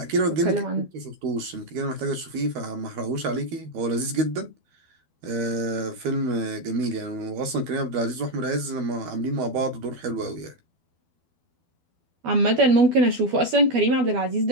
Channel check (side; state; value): left; late; 13 ms